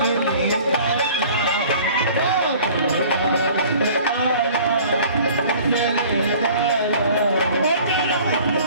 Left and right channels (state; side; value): inverted; both; correlation -0.48